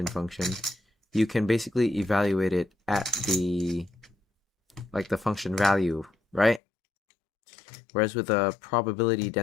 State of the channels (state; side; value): drops out; right; at 6.6 s